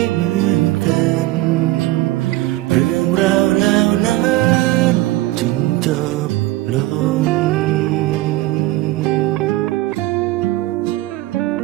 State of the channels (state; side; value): quieter; left; 17.4 dB